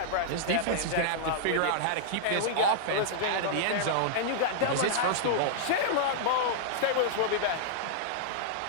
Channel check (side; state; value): both; different; correlation -0.01